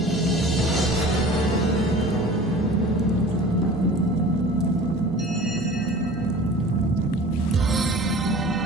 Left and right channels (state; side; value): normal; both; correlation 0.42